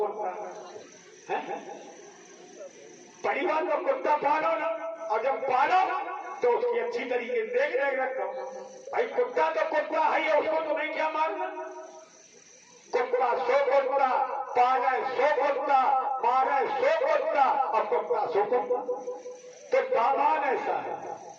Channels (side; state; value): both; identical; correlation 1.00